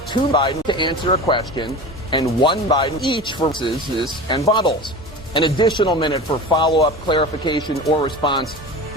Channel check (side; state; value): both; normal; correlation 0.32